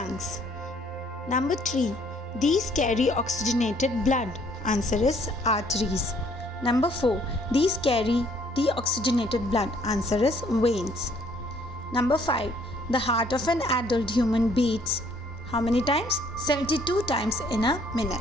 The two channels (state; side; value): normal; both; correlation 0.62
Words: Number 3. These carry oxygenated blood. Answer is arteries. Number 4. These carry deoxygenated blood. Answer is veins. Number 5. The heart of an adult human beats how many times? 72 times in a